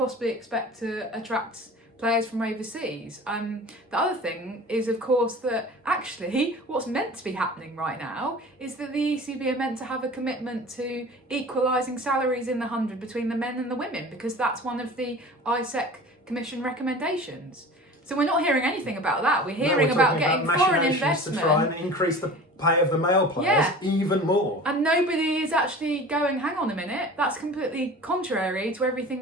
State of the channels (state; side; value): normal; both; correlation 0.39